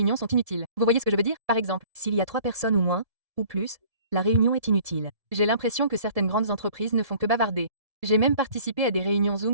sont inutiles. Vous voyez ce que je veux dire? Par exemple, S'il y a 3 personnes ou moins, ou plus, la réunion est inutile. j'ai l'impression que certaines grandes entreprises ne font que bavarder. J'ai même participé à des réunions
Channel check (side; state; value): left; late; 1.7 ms